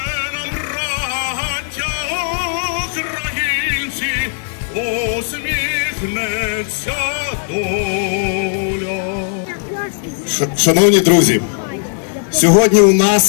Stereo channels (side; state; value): right; silent; 57 dB below the other